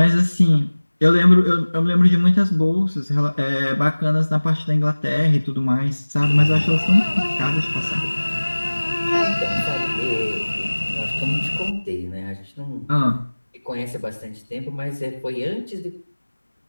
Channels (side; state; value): both; inverted; correlation -1.00